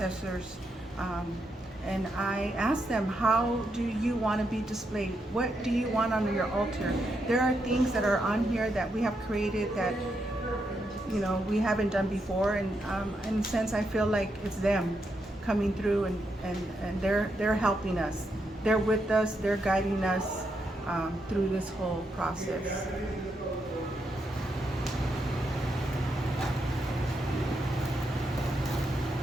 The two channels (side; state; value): both; normal; correlation 0.81